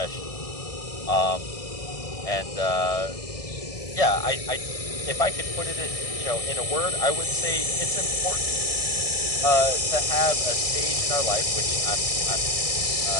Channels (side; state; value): right; late; 1.6 ms